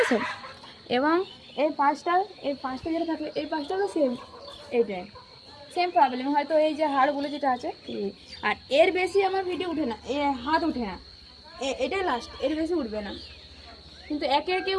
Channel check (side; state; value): both; identical; correlation 1.00